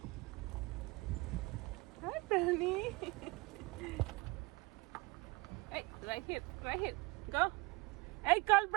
Hi, Brownie. Hey, right here, right here. Go. Hey, call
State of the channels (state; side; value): quieter; left; 24.5 dB